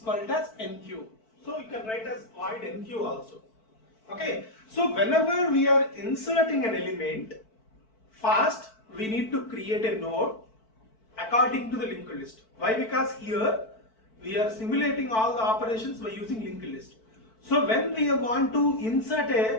as NQ. So you can write as void NQ also. Okay. So whenever we are inserting an element, first we need to create a node according to the linked list. Why? Because here we are simulating all the operations by using linked list. So when we want to insert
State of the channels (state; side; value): late; right; 4.5 ms